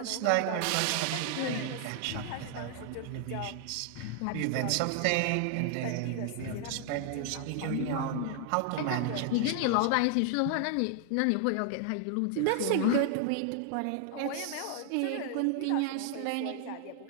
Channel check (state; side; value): different; both; correlation 0.00